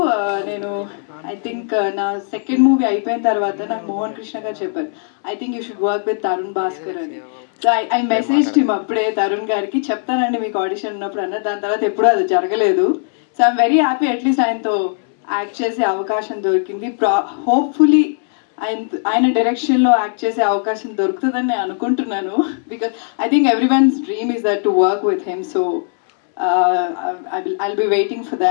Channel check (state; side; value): silent; right; 63 dB below the other